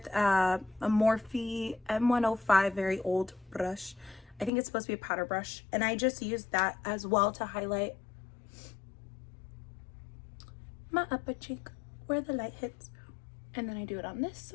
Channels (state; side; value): drops out; right; at 4.5 s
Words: a Morphe M105, very old brush. I think it's supposed to be a powder brush. And I just use that as well to highlight my upper cheek where the light hits. And then I do it on this